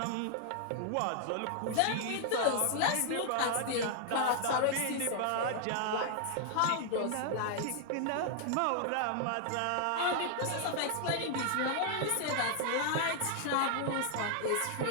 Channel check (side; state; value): both; different; correlation 0.00